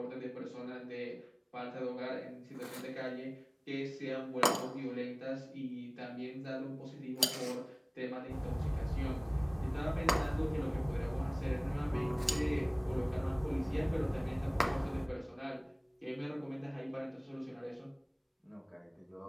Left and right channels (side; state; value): both; identical; correlation 1.00